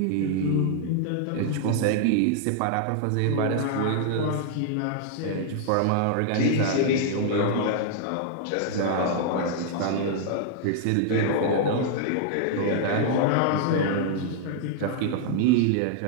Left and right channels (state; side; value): different; both; correlation -0.01